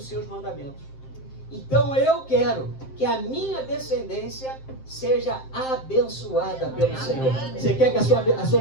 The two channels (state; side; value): late; right; 7.6 ms